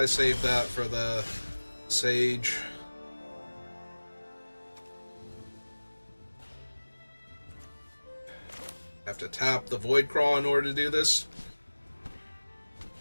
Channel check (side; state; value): both; inverted; correlation -1.00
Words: saved that for the Sage. Have to tap the Void Craw in order to do this.